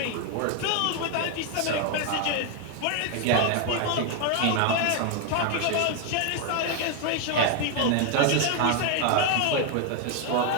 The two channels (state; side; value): different; both; correlation 0.01